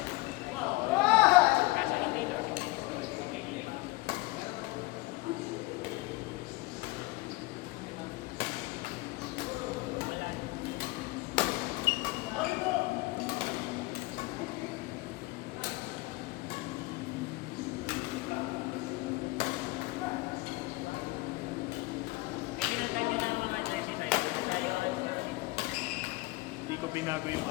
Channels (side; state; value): right; quieter; 21.8 dB